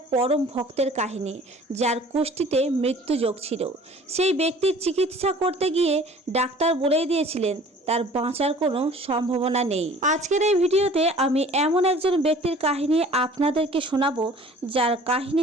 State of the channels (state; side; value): normal; both; correlation 0.49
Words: পরম ভক্তের কাহিনী, যার কুষ্ঠিতে মৃত্যুযোগ ছিল। সেই ব্যক্তির চিকিৎসা করতে গিয়ে ডাক্তার বলেই দিয়েছিলেন তার বাঁচার কোনো সম্ভাবনা নেই। আজকের এই ভিডিওতে আমি এমন একজন ব্যক্তির কাহিনী আপনাদেরকে শোনাবো, যার